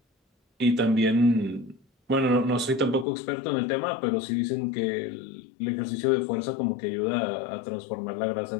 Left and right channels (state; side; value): drops out; right; at 3.1 s